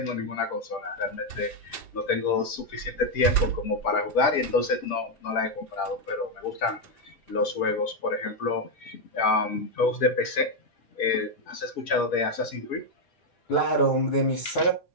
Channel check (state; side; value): late; right; 5.5 ms